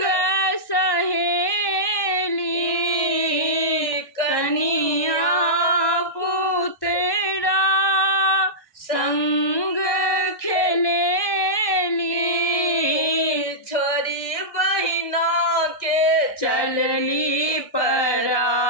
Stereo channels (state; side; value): late; right; 1.2 ms